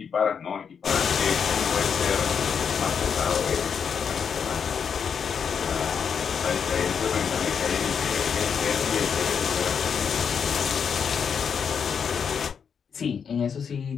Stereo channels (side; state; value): right; quieter; 6.8 dB